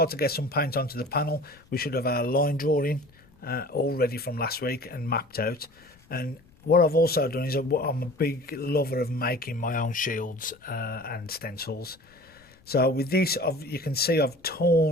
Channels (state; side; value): noise; left; rumble, 29 dB below the sound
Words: to get some paint onto the panel, we should have our line drawing all ready from last week and mapped out. And what I've also done is I'm a big lover of making my own shields and stencils. So with this, you can see I've